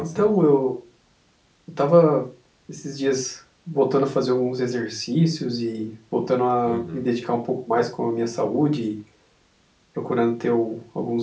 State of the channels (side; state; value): both; identical; correlation 1.00